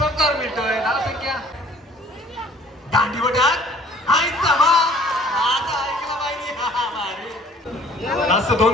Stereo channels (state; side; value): normal; both; correlation 0.53